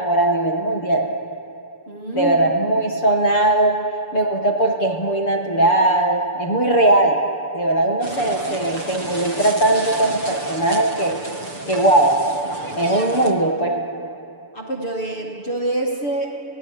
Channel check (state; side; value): late; right; 6.9 ms